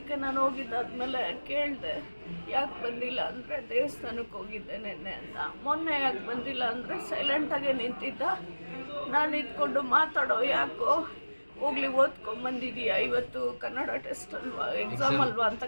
ನಾನು ಹೋಗಿದ್ದಾದ್ಮೇಲೆ ಕೇಳಿದೆ, ಯಾಕೆ ಬಂದಿಲ್ಲ ಅಂದರೆ ದೇವಸ್ಥಾನಕ್ಕೆ ಹೋಗಿದ್ದೆ ನೆನ್ನೆ ಅಂತ. ಮೊನ್ನೆ ಯಾಕೆ ಬಂದಿಲ್ಲ ಅಂದರೆ ಸೈಲೆಂಟಾಗೆ ನಿಂತಿದ್ದ. ನಾನು ಇದ್ಕೊಂಡು ಮಾತಾಡೋ, ಯಾಕೋ ಹೋಗ್ಲಿ ಓದ್ಕೊಂಬಂದಿದ್ದೀಯಾ, ಇವತ್ತು ಕನ್ನಡ ಟೆಸ್ಟ್ ಅಲ್ವಾ, ಎಕ್ಸಾಮ್ ಅಲ್ವಾ ಅಂತ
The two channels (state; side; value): inverted; both; correlation -1.00